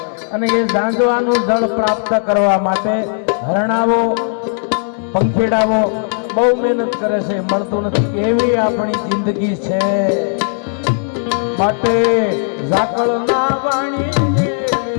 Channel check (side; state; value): right; silent; 69 dB below the other